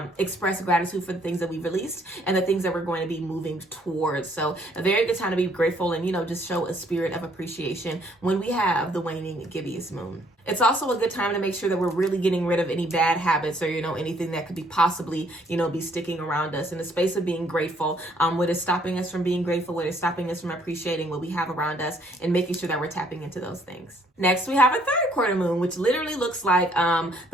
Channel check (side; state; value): both; normal; correlation 0.65